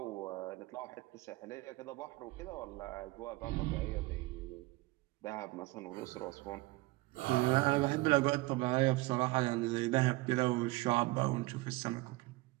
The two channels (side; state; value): left; quieter; 21.4 dB